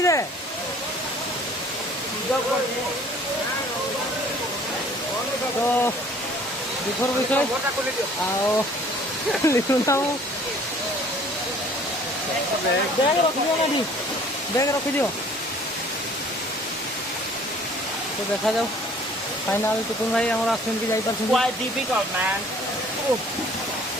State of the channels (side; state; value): both; normal; correlation 0.53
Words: दे तो विफर विषय बैग रखी दियो ना बैग रखी दियो। तो देखा जाओ फाइनाल टुकुन भाई हमारा आसमिन की जाइपर quite difficult man